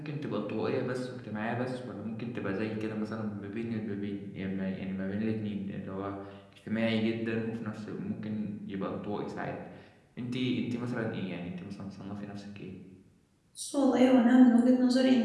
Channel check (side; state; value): both; identical; correlation 1.00